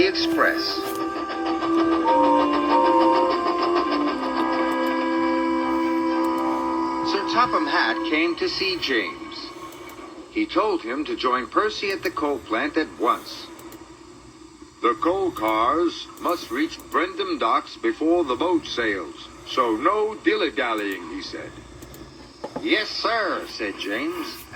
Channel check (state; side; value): identical; both; correlation 1.00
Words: express. Sir Topham Hatt came to see James. He told him to join Percy at the coal plant at once. The coal cars must reach Brendam docks before the boat sails, so no dilly-dallying, he said. Yes, sir, said James,